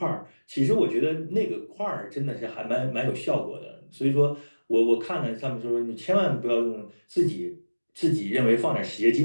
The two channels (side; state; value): both; inverted; correlation -1.00